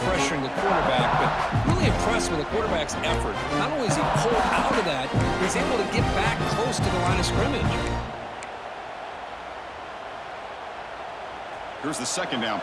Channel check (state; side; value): identical; both; correlation 1.00